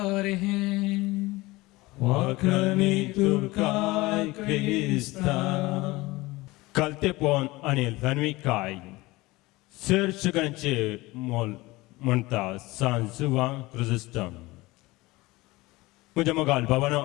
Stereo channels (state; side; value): quieter; right; 20.7 dB